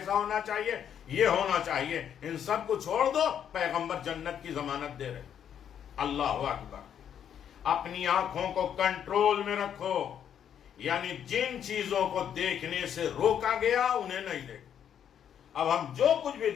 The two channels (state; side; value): quieter; right; 9.0 dB